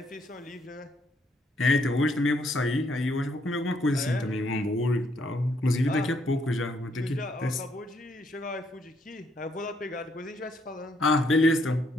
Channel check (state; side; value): normal; both; correlation 0.72